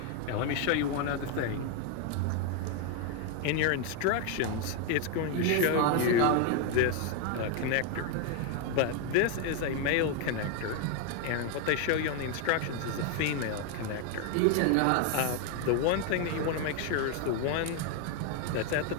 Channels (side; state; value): both; different; correlation 0.01